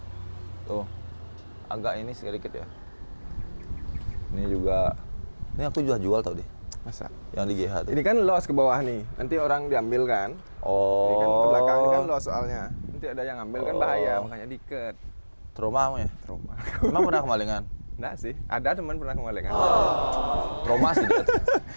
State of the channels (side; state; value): both; inverted; correlation -1.00